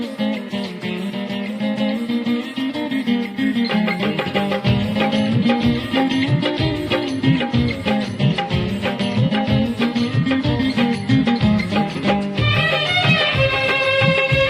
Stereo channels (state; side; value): identical; both; correlation 1.00